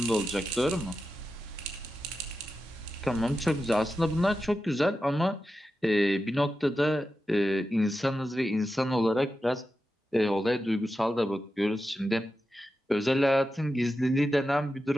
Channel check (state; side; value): normal; both; correlation 0.91